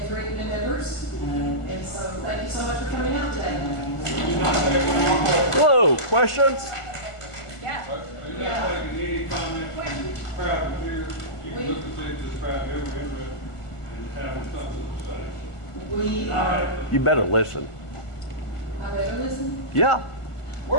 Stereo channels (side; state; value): right; late; 1.5 ms